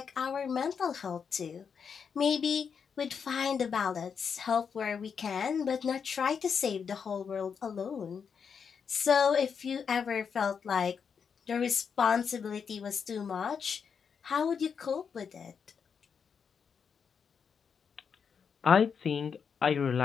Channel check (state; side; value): quieter; right; 6.5 dB